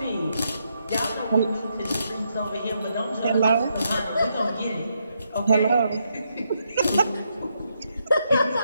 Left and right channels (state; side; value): inverted; both; correlation -0.79